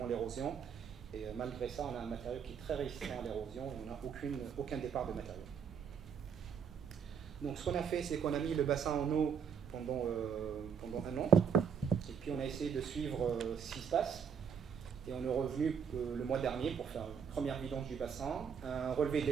l'érosion. Et malgré ça, on a un matériau qui est très résistant à l'érosion et on n'a aucun départ de matériau. Donc ce qu'on a fait, c'est qu'on a mis le bassin en eau pendant un an. Et puis on a essayé de suivre ce qui se passe. Et on est revenu le mois dernier pour faire une première vidange du bassin, un relevé de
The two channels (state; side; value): quieter; left; 7.2 dB